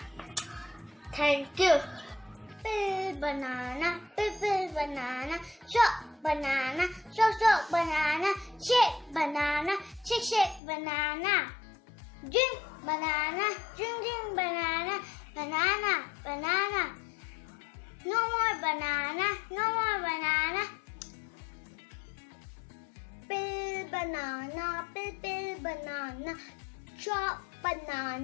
Thank you. Banana, banana, chop banana, chop banana, shake banana, shake banana. Drink banana, drink banana, banana. No more banana, no more banana. Pill banana, chop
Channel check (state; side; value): drops out; right; at 10.6 s